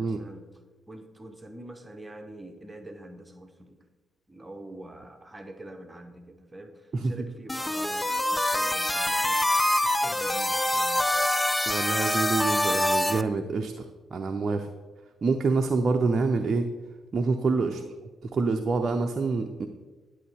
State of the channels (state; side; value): normal; both; correlation 0.91